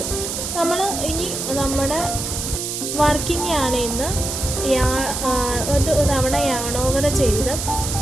നമ്മൾ ഇനി നമ്മുടെ വർക്കിംഗ് യാണിന്ന് ഒരു തവണ യാൺ ഓവർ ചെയ്ത്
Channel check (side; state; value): right; noise; hiss, 4 dB below the sound